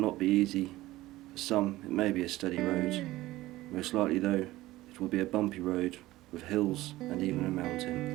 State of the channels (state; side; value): quieter; left; 17.3 dB